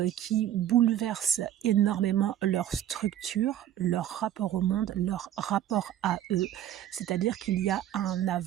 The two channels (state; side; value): quieter; left; 11.6 dB